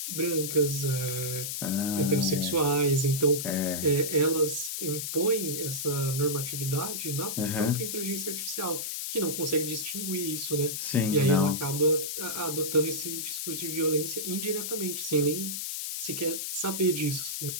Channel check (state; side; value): noise; left; hiss, 3 dB below the sound